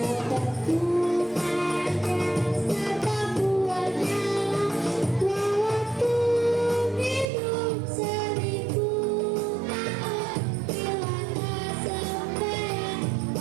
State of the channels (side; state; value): left; drops out; at 7.2 s